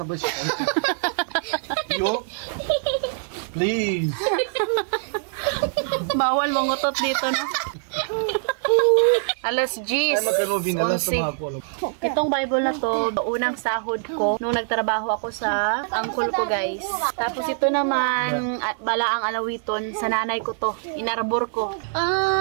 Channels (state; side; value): silent; left; digital silence